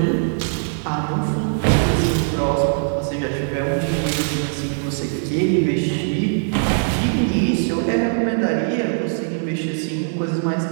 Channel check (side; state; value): left; silent; digital silence